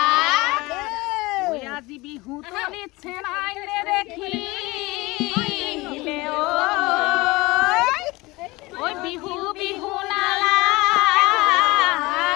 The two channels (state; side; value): quieter; right; 22.1 dB